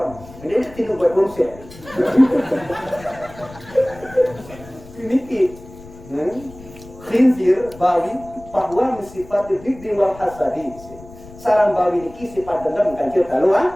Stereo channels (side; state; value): left; noise; rumble, 19 dB below the sound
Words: Ini tidak buat konsep. Ini khinzir bawi bahwa sifat hibdi wal hasadi. Sarang bawi ini sifat dendam kan kita tahu